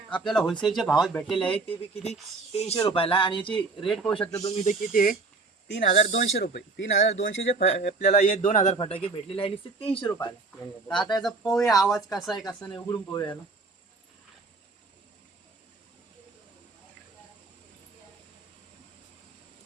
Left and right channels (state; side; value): quieter; left; 3.8 dB